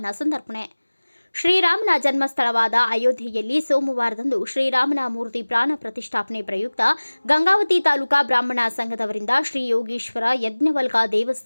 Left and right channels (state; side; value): inverted; both; correlation -1.00